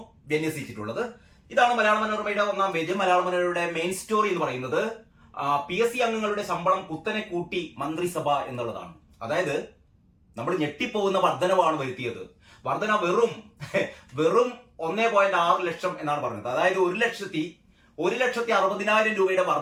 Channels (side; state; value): both; identical; correlation 1.00